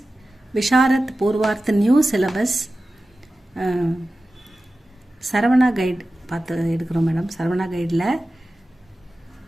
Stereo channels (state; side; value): normal; both; correlation 0.95